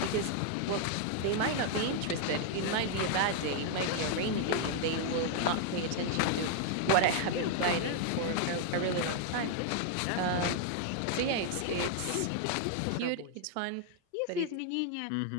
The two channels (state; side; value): different; both; correlation 0.00